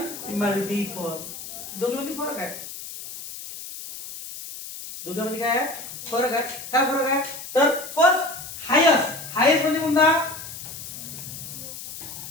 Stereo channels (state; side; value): noise; left; hiss, 11 dB below the sound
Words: मल्टिपल. दोघांमध्ये फरक आहे. दोघांमध्ये काय आहे? फरक आहे. काय फरक आहे? तर फर्स्ट हायेस्ट. हायेस्ट म्हणजे कोणता?